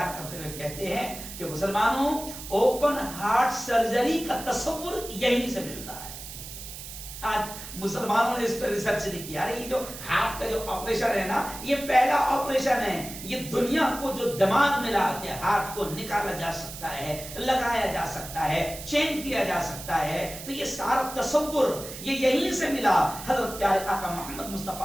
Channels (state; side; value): noise; right; hiss, 11 dB below the sound